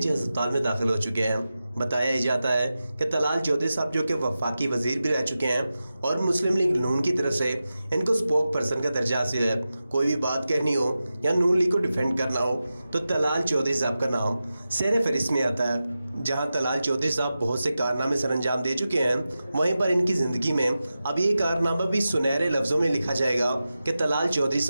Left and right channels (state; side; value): inverted; both; correlation -0.93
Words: ہسپتال میں داخل ہو چکے ہیں۔ بتایا جاتا ہے کہ طلال چودھری صاحب جو کہ وفاقی وزیر بھی رہ چکے ہیں اور مسلم لیگ نون کی طرف سے ان کو اسپوک پرسن کا درجہ حاصل ہے۔ کوئی بھی بات کہنی ہو یا نون لیگ کو ڈیفینڈ کرنا ہو تو طلال چودھری صاحب کا نام سیر فہرست میں آتا ہے۔ جہاں طلال چودھری صاحب بہت سے کارنامے سر انجام دے چکے ہیں، وہیں پر ان کی زندگی میں اب یہ کارنامہ بھی سنہرے لفظوں میں لکھا جائے گا کہ طلال چودھری